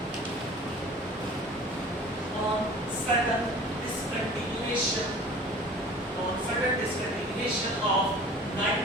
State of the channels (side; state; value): both; normal; correlation 0.44